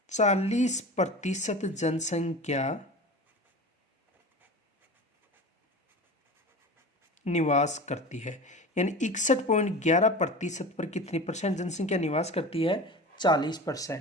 40% जनसंख्या निवास करती है। यानी 61.11% पर कितनी परसेंट जनसंख्या निवास करती है?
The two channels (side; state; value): both; normal; correlation 0.33